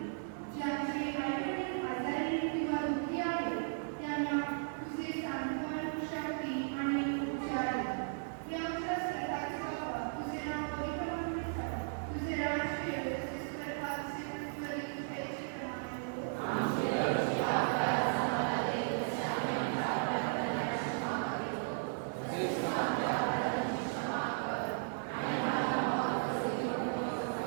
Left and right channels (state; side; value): silent; left; digital silence